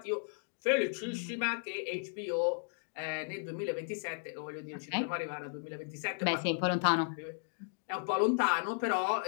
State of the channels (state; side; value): silent; right; digital silence